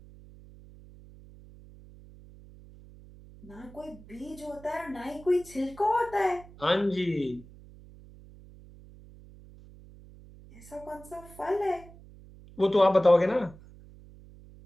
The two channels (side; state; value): right; noise; hum, 21 dB below the sound